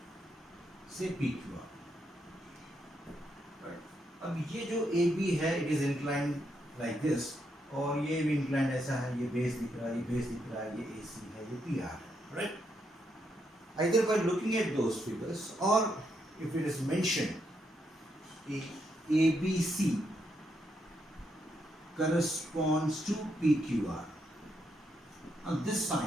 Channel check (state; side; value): normal; both; correlation 0.79